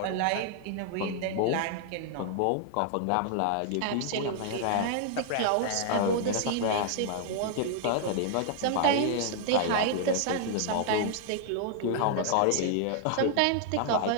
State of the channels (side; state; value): both; different; correlation -0.01